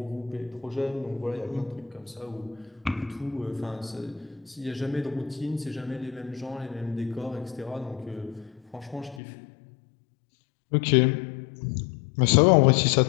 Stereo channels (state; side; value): drops out; right; at 9.2 s